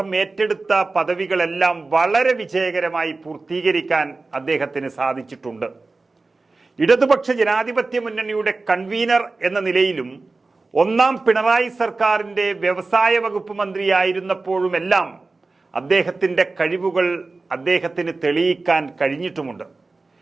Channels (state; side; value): quieter; left; 3.6 dB